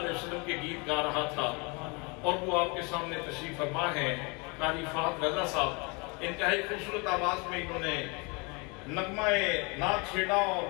وسلم کے گیت گا رہا تھا اور وہ آپ کے سامنے تشریف فرما ہے قاری فہد رضا صاحب انتہائی خوبصورت آواز میں انہوں نے نغمہ نعت چھیڑا اور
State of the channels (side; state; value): right; quieter; 30.2 dB